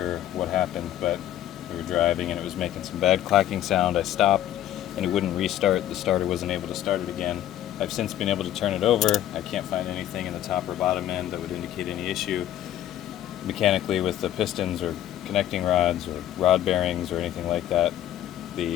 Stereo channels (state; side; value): quieter; right; 12.3 dB